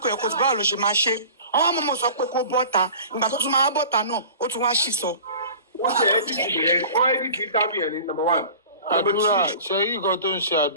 yẹ kó tó báwo ló ṣe máa ṣe. Àwọn ọmọ sọ pé kó bọ́ta. Ìgbà tó tún máa bọ́ta náà, ó tún wá ṣì sọ. Wọ́n ṣe edit interview yẹn ní number one. Àdúrà ṣe yí nǹkan tó ń ṣe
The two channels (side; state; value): both; inverted; correlation -0.41